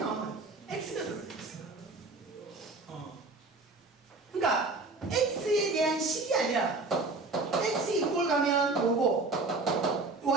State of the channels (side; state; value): left; quieter; 3.5 dB